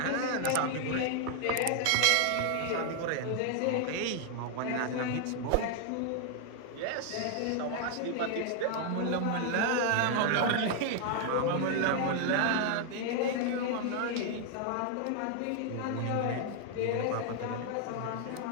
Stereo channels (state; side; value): different; both; correlation 0.00